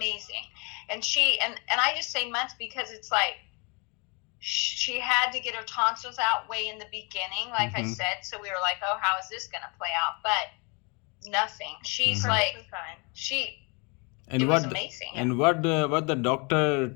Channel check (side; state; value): right; quieter; 31.8 dB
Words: And and I just say months because it's like she had to get her tonsils out way in the beginning, like I said. So we were like, oh, how is this going to play out? But nothing. She's like, Perfectly fine. And It was what amazing. and what the doctor